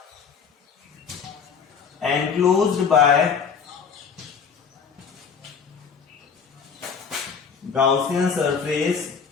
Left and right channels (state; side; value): quieter; right; 6.3 dB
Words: enclosed by Gaussian surface